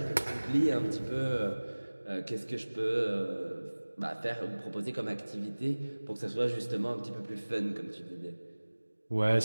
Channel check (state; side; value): inverted; both; correlation -1.00